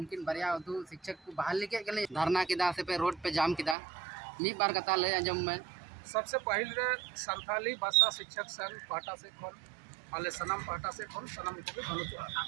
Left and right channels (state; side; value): drops out; left; at 3.8 s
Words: बारिया उर्दू शिक्षक को बहाल के गले धरना किदा से पे रोड पे जाम किदा नी बार कथा ले अंजम में सबसे पहले रे संथाली भाषा शिक्षक संघ पाटा से खोल आले सनम पाटा से खोल सनम को भी भनु